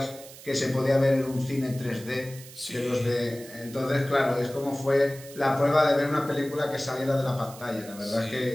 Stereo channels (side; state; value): right; noise; hiss, 17 dB below the sound